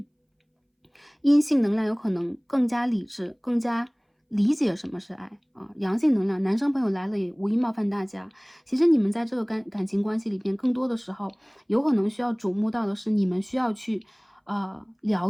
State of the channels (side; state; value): both; identical; correlation 1.00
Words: 阴性能量有可能更加理智，更加理解什么是爱啊。阳性能量，男生朋友来了也无意冒犯大家。其实你们在这个感情关系里边，更多的时候有可能需要瞩目到的是你们需要去